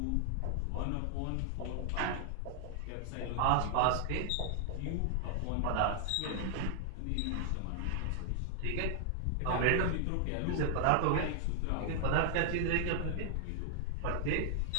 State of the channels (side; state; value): both; different; correlation 0.00